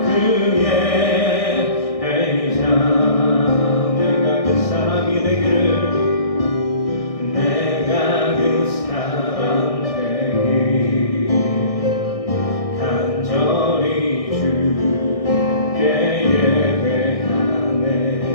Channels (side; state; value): right; late; 1.6 ms